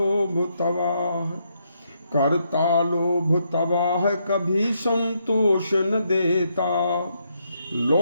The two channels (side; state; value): both; inverted; correlation -0.77